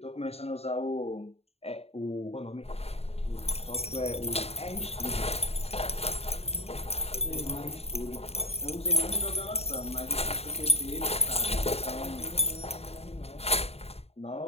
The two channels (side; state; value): right; late; 0.30 ms